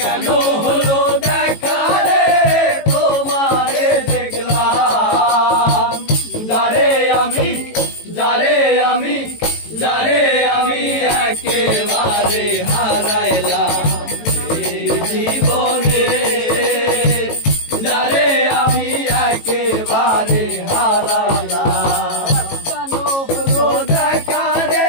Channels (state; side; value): late; right; 18 ms